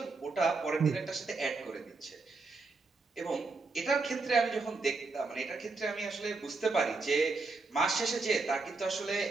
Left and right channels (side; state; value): left; quieter; 3.8 dB